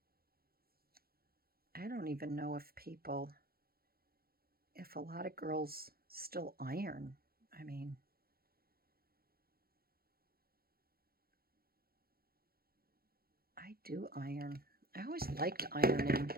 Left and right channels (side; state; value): left; late; 0.44 ms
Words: on. I don't even know if a lot of girls still iron. I mean, I do iron. I always liked ironing.